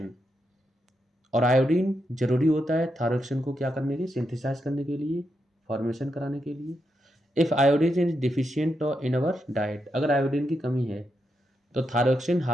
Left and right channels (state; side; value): normal; both; correlation 0.84